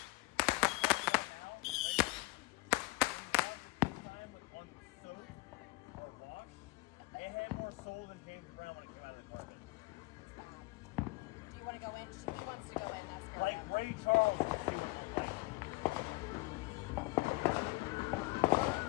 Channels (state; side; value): quieter; right; 22.7 dB